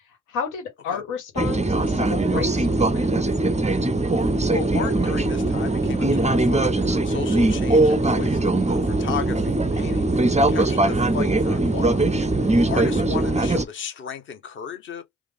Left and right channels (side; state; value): both; normal; correlation 0.64